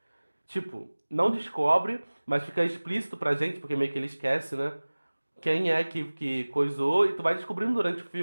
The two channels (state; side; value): inverted; both; correlation -1.00